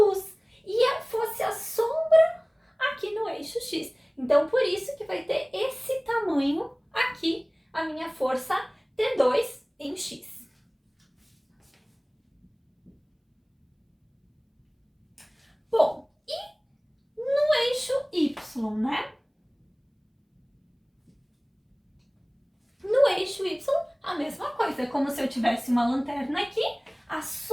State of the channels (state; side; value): identical; both; correlation 1.00